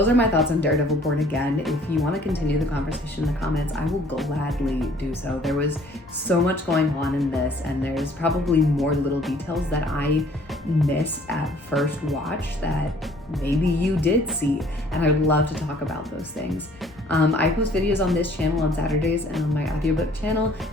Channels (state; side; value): normal; both; correlation 0.57